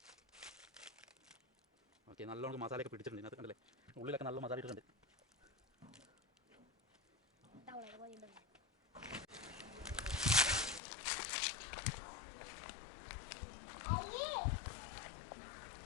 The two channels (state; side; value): drops out; right; at 10.8 s